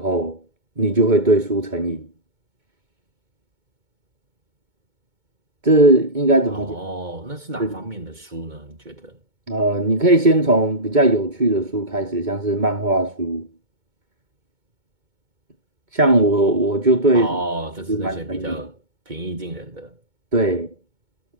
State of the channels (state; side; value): late; left; 2.2 ms